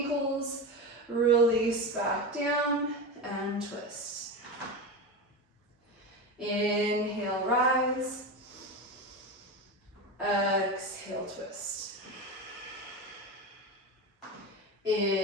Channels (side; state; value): both; normal; correlation 0.21